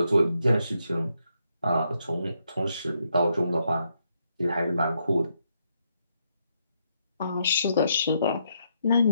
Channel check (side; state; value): both; inverted; correlation -0.78